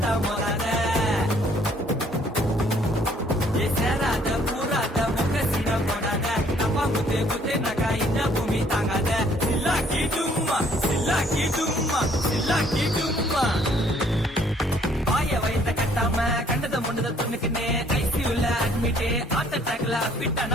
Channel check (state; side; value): normal; both; correlation 0.62